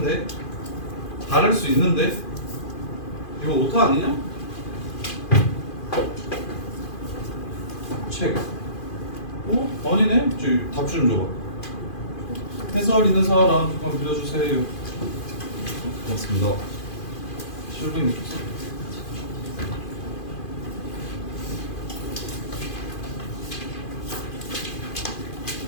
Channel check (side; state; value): right; late; 2.5 ms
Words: 다를 수 있는데? 이거 오타 아니냐? 책. 아니네? 답 좀 줘봐. 해설 있는 사람 잠깐 빌려주세요. 고맙습니다. 실빙